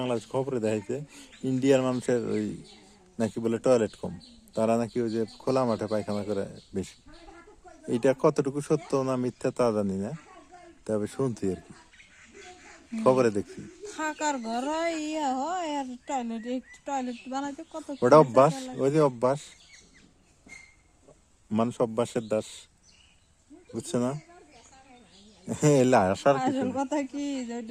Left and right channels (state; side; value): identical; both; correlation 1.00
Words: খবরে দেখাইছে ইন্ডিয়ার মানুষের ওই নাকি বলে টয়লেট কম, তারা নাকি ওই যে খোলা মাঠে পায়খানা করে বেশি। এইটা কতটুকু সত্য না মিথ্যা তা জানি না, তবে শুনছি আর কি, খবরে দেখছি। ওটা অভ্যাস, ওই যে অভ্যাস, মানুষ অভ্যাসের দাস, বুঝছে না? আসল কথা কি